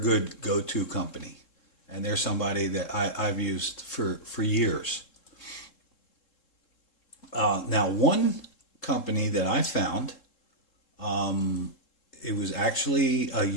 good go-to company, and they're somebody that I've used for years. Now, one company that I found, it was actually a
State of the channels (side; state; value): right; late; 3.7 ms